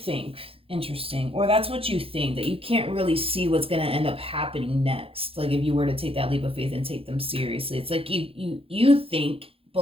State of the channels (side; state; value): left; late; 0.27 ms